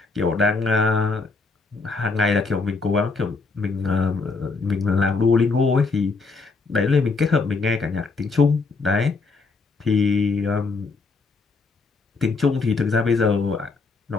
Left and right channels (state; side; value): quieter; right; 4.1 dB